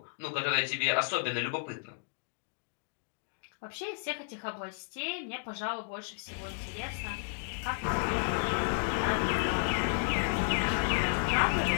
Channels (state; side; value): silent; right; digital silence